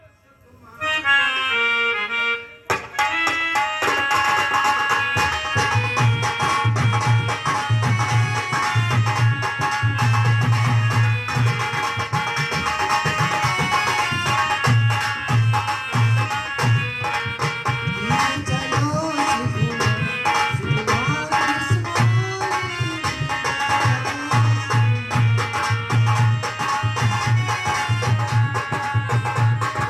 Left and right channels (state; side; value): identical; both; correlation 1.00